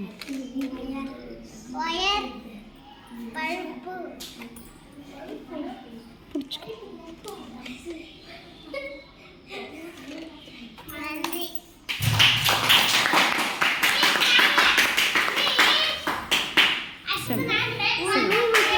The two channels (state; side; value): identical; both; correlation 1.00